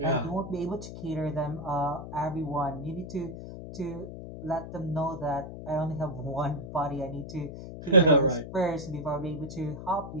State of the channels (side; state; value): left; noise; hum, 10 dB below the sound